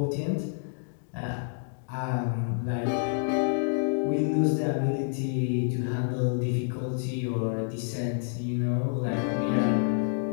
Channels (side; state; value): right; silent; digital silence